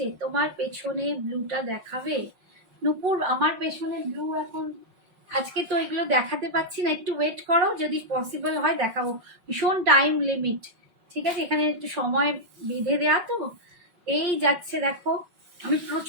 তোমার পেছনে ব্লুটা দেখাবে নুপুর? আমার পেছনে ব্লু এখন আজকে তো এগুলো দেখাতে পাচ্ছি না, একটু ওয়েট করো, যদি পসিবল হয় দেখাবো। ভীষণ টাইম লিমিট, ঠিক আছে, এখানে একটু সময় বেঁধে দেওয়া তো। এই যাচ্ছে দেখো, আমি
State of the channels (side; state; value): left; late; 5.7 ms